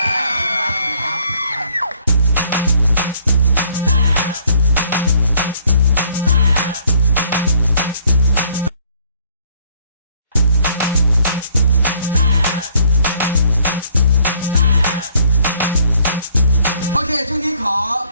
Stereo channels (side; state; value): both; inverted; correlation -0.63